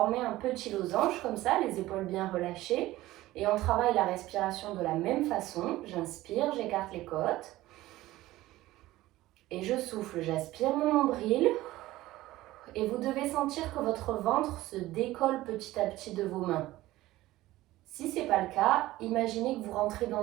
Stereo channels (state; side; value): quieter; left; 16.8 dB